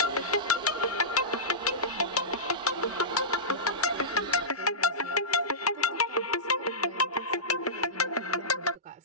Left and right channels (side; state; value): both; normal; correlation -0.18